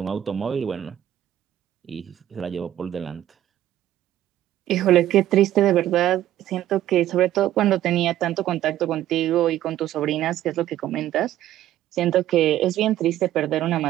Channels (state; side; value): quieter; left; 12.9 dB